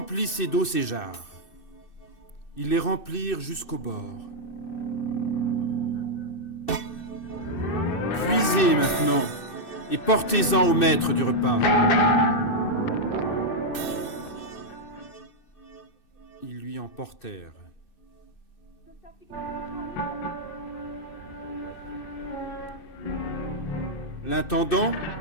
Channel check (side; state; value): right; late; 2.6 ms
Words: d'eau ces jarres. » Ils les remplirent jusqu'au bord. « Puisez maintenant et portez-en au maître du repas. » Ils lui en portèrent. L'intendant